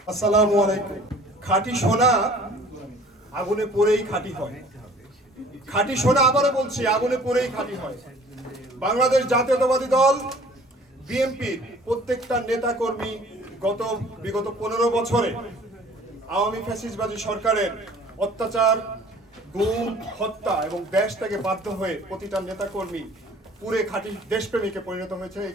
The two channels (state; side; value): normal; both; correlation 0.51